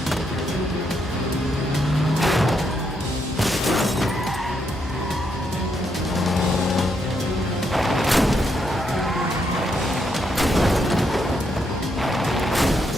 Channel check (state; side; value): normal; both; correlation 0.78